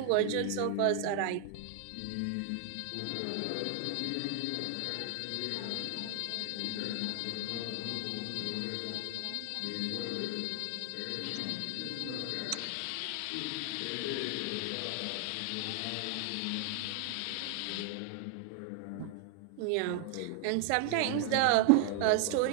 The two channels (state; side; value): different; both; correlation 0.00